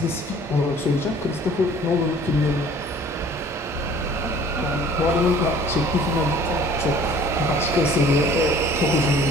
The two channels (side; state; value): both; normal; correlation 0.51